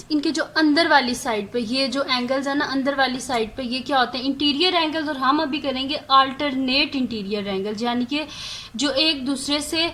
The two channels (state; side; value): identical; both; correlation 1.00